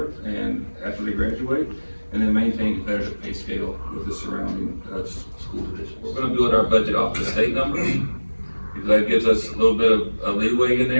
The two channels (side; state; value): both; inverted; correlation -1.00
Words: and after they graduate, and then maintain competitive pay scale with the surrounding school divisions. We're going to build our budget off the state numbers, because that gives us a little bit of a leeway in